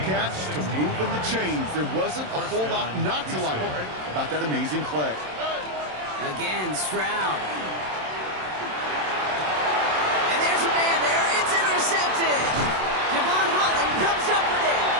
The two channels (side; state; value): left; late; 27 ms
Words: catch to moving the chains. There wasn't a whole lot not to like about that amazing play. Again, Stroud. And there's a man there. It's intercepted. Devon Holland comes up with it.